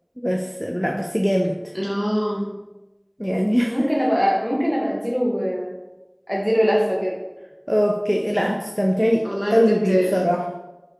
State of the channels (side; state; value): both; identical; correlation 1.00